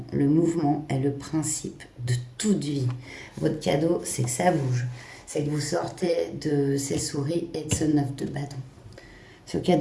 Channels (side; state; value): both; identical; correlation 1.00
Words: le mouvement est le principe de toute vie. Votre cadeau, c'est que ça bouge. C'est que vous sortez de ces souris et de ce 9 de bâton. Ce